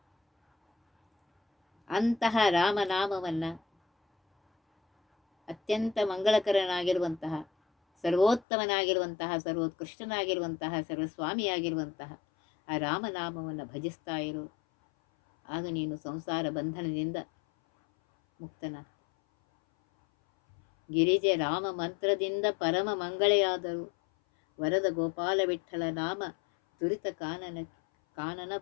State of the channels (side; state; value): right; drops out; at 8.5 s